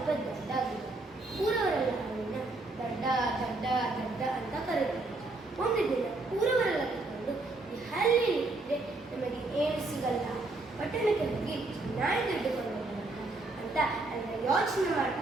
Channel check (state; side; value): quieter; left; 3.1 dB